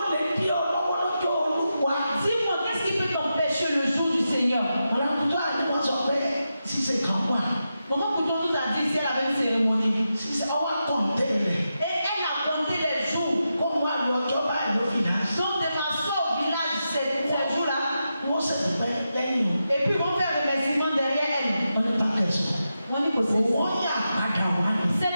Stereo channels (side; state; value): both; inverted; correlation -0.88